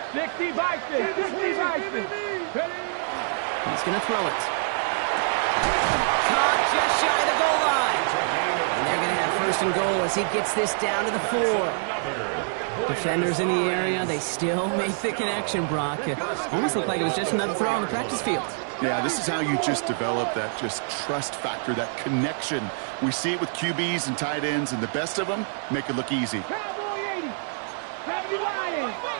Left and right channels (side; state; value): left; silent; 61 dB below the other